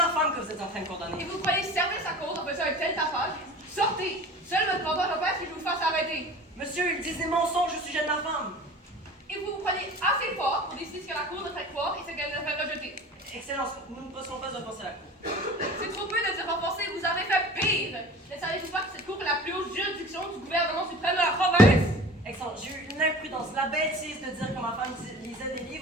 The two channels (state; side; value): normal; both; correlation 0.40